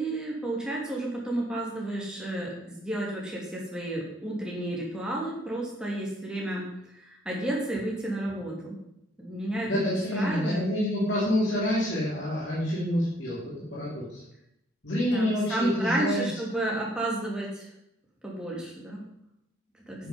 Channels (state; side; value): normal; both; correlation 0.65